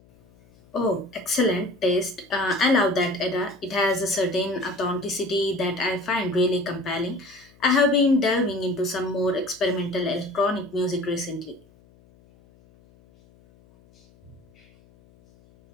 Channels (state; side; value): noise; left; hum, 29 dB below the sound